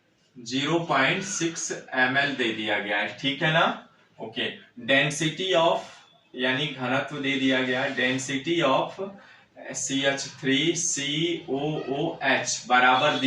0.6 ml दे दिया गया है। ठीक है ना। ओके, डेंसिटी ऑफ यानी घनत्व दे दिया गया है, डेंसिटी ऑफ CH3COOH बराबर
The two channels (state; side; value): identical; both; correlation 1.00